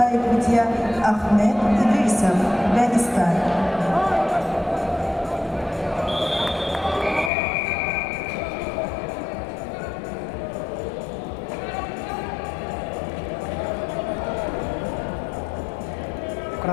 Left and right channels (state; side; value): drops out; right; at 7.3 s